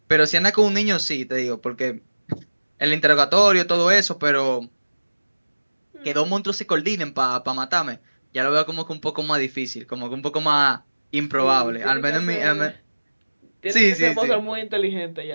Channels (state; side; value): inverted; both; correlation -1.00